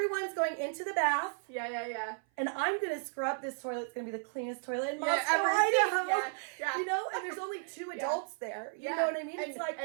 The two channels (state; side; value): silent; left; 55 dB below the other